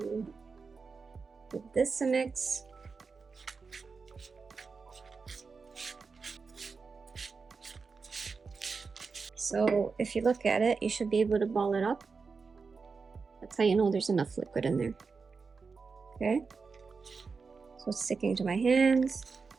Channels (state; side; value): quieter; left; 4.8 dB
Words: give this a mix. So if you look at it, you should be able to ball it up. That's how you know there's enough liquid in there. Okay, so it's sticking to my hands,